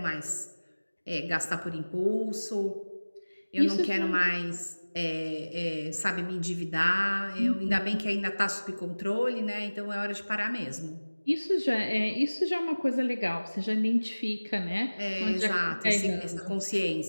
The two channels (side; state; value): both; inverted; correlation -1.00